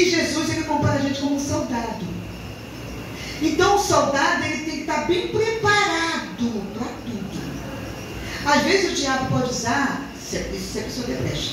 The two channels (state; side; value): identical; both; correlation 1.00